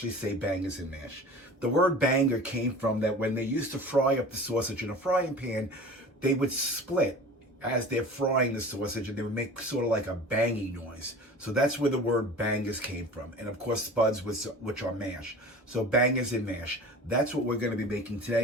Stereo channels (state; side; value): normal; both; correlation 0.39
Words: say bangers and mash. The word banger came from that when they used to fry up the sausage in a frying pan, they would split as they're frying the sausage, and they would make sort of like a banging noise. So that's where the word bangers came from. And of course, spuds, which are mash. So bangers and mash. That's what we're going to be making